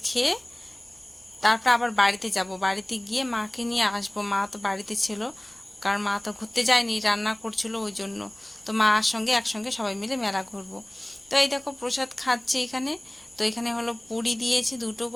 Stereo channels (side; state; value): right; noise; rumble, 30 dB below the sound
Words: খেয়ে তারপর আবার বাড়িতে যাব, বাড়িতে গিয়ে মাকে নিয়ে আসবো। মা তো বাড়িতে ছিল, কারণ মা তো ঘুরতে যায়নি, রান্না করছিল ওই জন্য। তো মার সঙ্গে একসঙ্গে সবাই মিলে মেলা ঘুরবো। তো এই দেখো প্রসাদ খাচ্ছি এখানে। তো এখানে হলো পুরি দিয়েছে 2টো